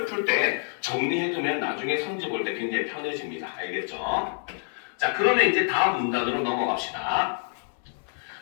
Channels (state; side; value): silent; right; 60 dB below the other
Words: 풀 때 정리해두면 나중에 성질 볼 때 굉장히 편해집니다. 알겠죠? 자, 그러면 이제 다음 문단으로 넘어갑시다.